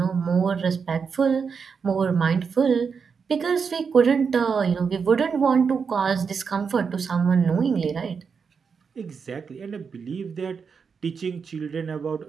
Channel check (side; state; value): left; quieter; 5.9 dB